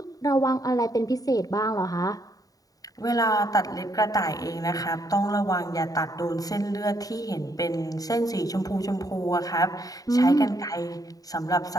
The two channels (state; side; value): late; right; 0.18 ms